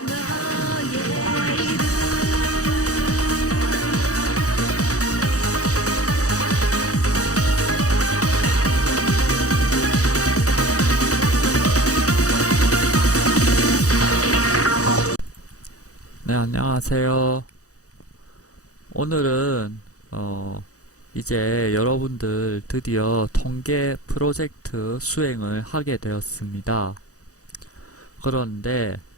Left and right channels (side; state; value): right; late; 0.66 ms